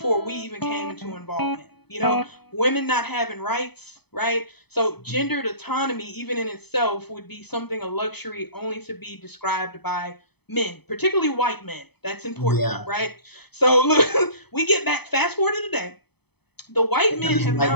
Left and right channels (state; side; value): late; right; 0.98 ms